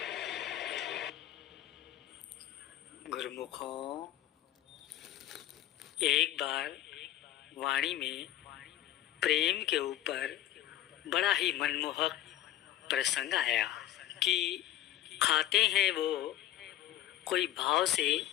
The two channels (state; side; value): quieter; right; 13.1 dB